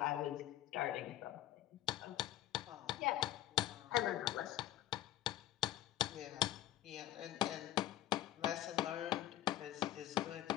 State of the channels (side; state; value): right; quieter; 13.8 dB